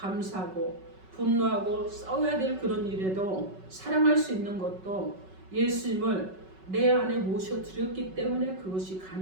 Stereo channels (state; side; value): late; left; 5.3 ms